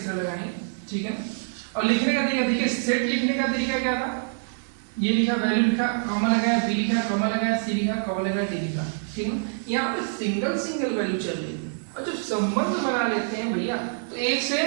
तरह लगाएंगे, ठीक है। और लिखने का तरीका देखिए, सेट लिखने का तरीका क्या था? ये लिखा, वैल्यू लिखा, कॉमा लगाया, b लिखा, कॉमा लगाया, c लिखा, कॉमा लगाया, d लिखा, ठीक है। यहाँ पे सिंगल वैल्यू चल रही है और जब संबंध बना लेते हैं भैया तो एक से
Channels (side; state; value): left; silent; digital silence